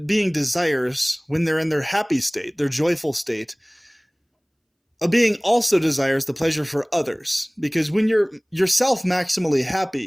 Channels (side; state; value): both; identical; correlation 1.00